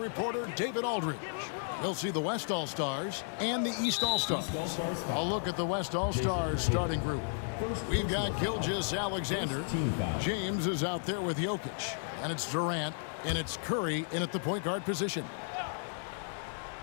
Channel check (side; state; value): right; silent; digital silence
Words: David Aldridge. We'll see the West All-Stars and the East All-Stars. I'll look at the West All-Stars starting group. We've got Gilgeous-Alexander. James is out there with Jokic. And it's Durant, and it's Curry in at the point guard position.